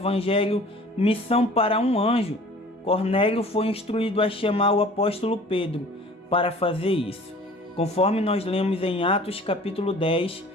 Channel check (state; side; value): normal; both; correlation 0.47